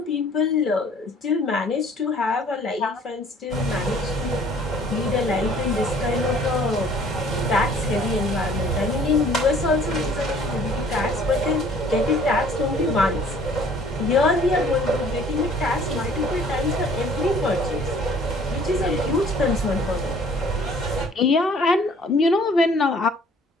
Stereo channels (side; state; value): both; normal; correlation 0.55